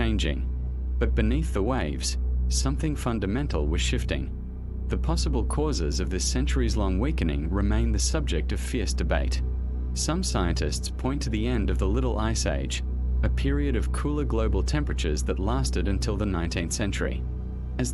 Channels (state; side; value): identical; both; correlation 1.00